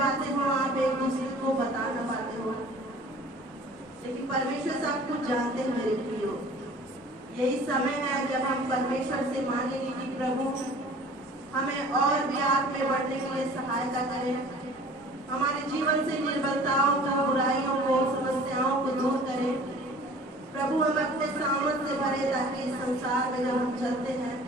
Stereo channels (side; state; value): both; normal; correlation 0.47